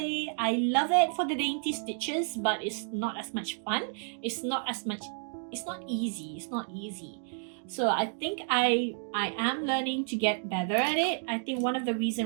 I love it for the dainty stitches, but it's not as much fun. It's not easy. So I think I am learning to get better at it. I think one of the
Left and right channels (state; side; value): silent; left; 57 dB below the other